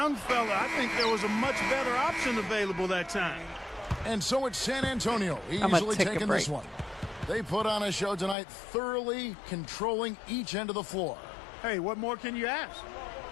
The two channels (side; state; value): right; drops out; at 8.3 s